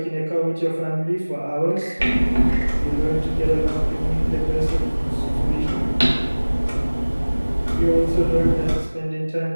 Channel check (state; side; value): inverted; both; correlation -1.00